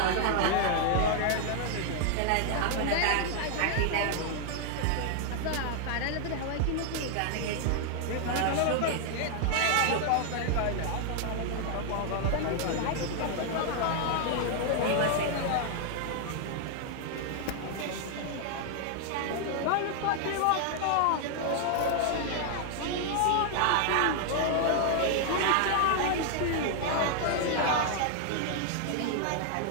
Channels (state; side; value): different; both; correlation 0.00